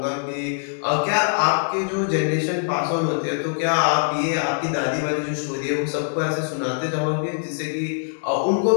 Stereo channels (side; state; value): right; silent; digital silence